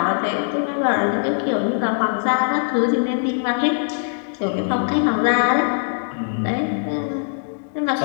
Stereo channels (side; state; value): right; silent; digital silence